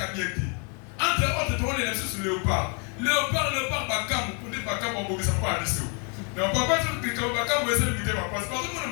à bien te. Entre autres, tu vois les nations sur Léopard. Léopard, Bakam, pour dire Bakam, on ne peut pas aller sur. Mais on ne peut pas dire que Bakam va essayer de lutter parce que tout le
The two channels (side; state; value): right; quieter; 38.2 dB